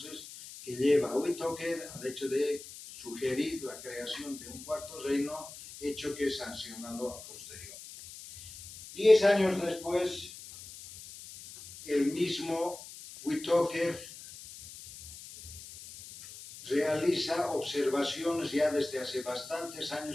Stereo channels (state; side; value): noise; left; hiss, 14 dB below the sound